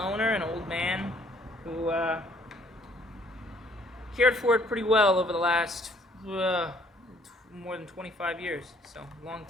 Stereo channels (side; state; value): both; normal; correlation 0.61